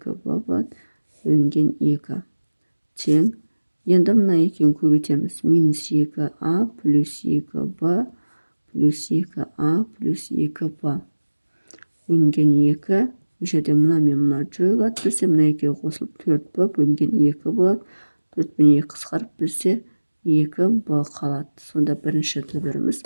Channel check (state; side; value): inverted; both; correlation -1.00